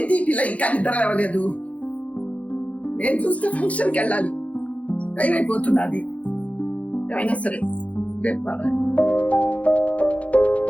ఈ పిల్ల ఇంకా నిద్ర లేవలేదు? నేను చూస్తే ఫంక్షన్కి వెళ్ళాలి, టైం అయిపోతున్నది. ఏమైనా సరే రేపు పడాలి.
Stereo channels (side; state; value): right; late; 0.066 ms